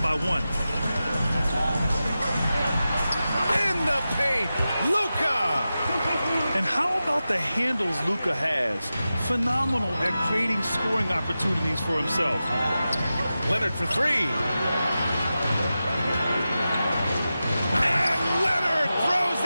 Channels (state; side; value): inverted; both; correlation -0.93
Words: by 1. In the paint, Luka! And how about the handles Luka has? Phenomenal at creating scoring opportunities for himself. Leonard for 3. And Leonard throws